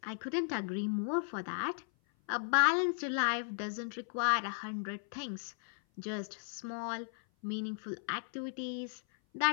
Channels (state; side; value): silent; right; 54 dB below the other